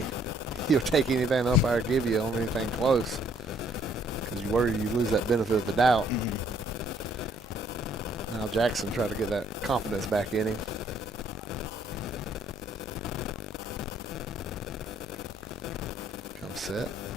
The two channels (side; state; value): both; normal; correlation 0.64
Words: take anything the umpire give you on anything close, because you worry you lose that benefit of the doubt. Now Jackson tried to get that confidence back in him. Comes set.